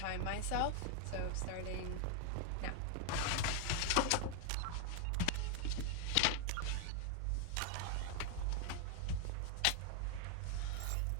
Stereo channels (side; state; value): both; different; correlation 0.00